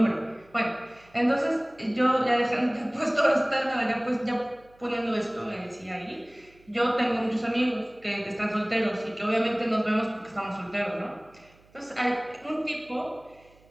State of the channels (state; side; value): noise; right; hum, 29 dB below the sound